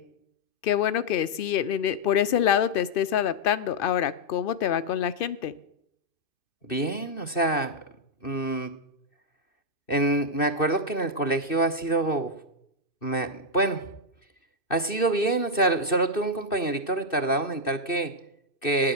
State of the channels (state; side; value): late; right; 2.6 ms